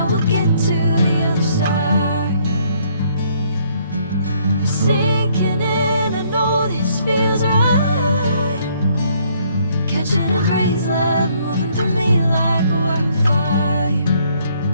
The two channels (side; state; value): both; inverted; correlation -0.66